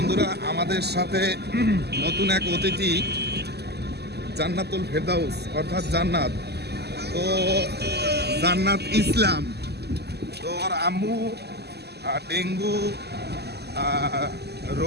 আমাদের সাথে নতুন এক অতিথি জান্নাতুল ফেরদাউস অর্থাৎ জান্নাত। তো জান্নাত ইসলাম, তো ওর আম্মু ডেঙ্গু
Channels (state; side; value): late; left; 0.48 ms